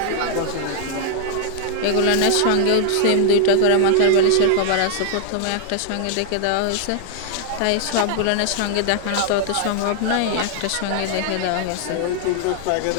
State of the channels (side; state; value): both; different; correlation 0.00